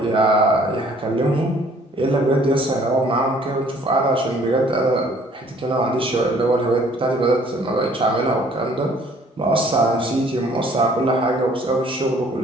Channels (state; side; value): normal; both; correlation 0.57